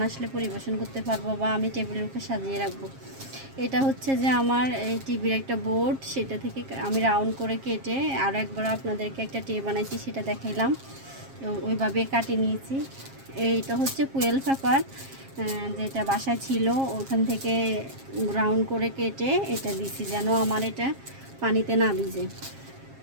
আসলে পরিবেশন করতে পারবো বা আমি টেবিলের উপর সাজিয়ে রাখবো। এটা হচ্ছে যে আমার এই টিভির একটা বোর্ড, সেটা থেকে আমি রাউন্ড করে কেটে আর একবার আপনাদেরকে একটা ট্রে বানাইছি, সেটা দেখাইলাম। ওইভাবে কাটিয়ে নিয়েছি। এইটা হচ্ছে ফুয়েল পেপার, যেটা বাসায় ছিল, ওখান থেকে রাউন্ড করে কেটে এটা দিছি যেন আমার এটা পানিতে না ভিজে।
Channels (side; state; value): left; late; 7.4 ms